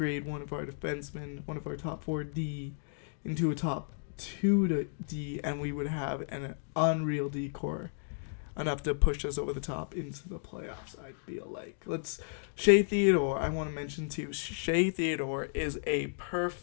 one of our defensemen, one of our top 4 D, into a top 2 D, and we would have an unreal D core, enough to push us over the top into the playoffs, I feel like. Shea Theodore, I want to mention too. Shea Theodore is a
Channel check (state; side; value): silent; right; digital silence